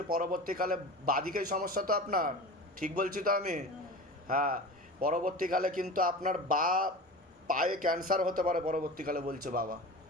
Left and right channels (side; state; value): both; normal; correlation 0.32